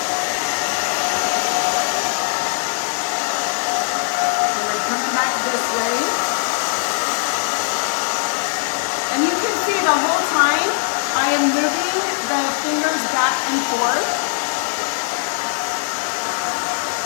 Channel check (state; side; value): silent; right; 66 dB below the other